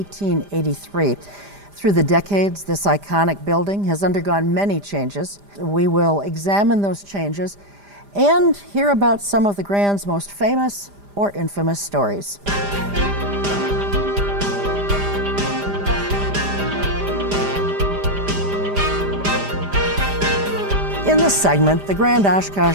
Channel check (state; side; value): late; left; 5.0 ms